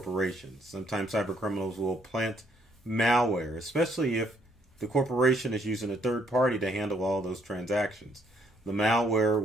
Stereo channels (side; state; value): both; normal; correlation 0.69